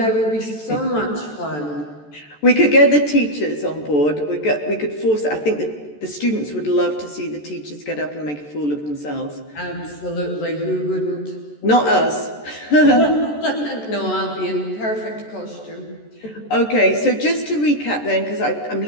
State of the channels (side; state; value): right; late; 14 ms